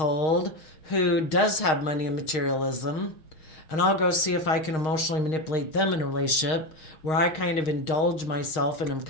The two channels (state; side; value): late; right; 6.4 ms